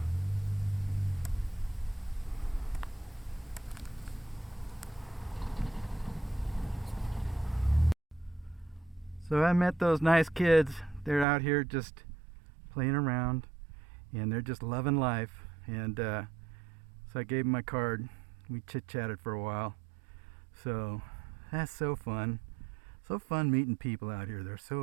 So I met those nice kids. They're out here just playing around, and they're just loving life. And so I gave them my card. We chit-chatted for a while. So that's so fun. So fun meeting people out here. They're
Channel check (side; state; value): left; drops out; at 11.2 s